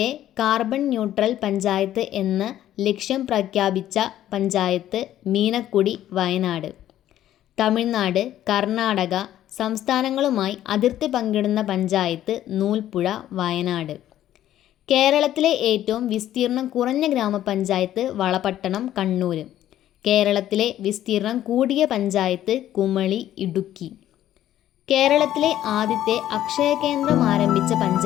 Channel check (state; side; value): quieter; right; 12.3 dB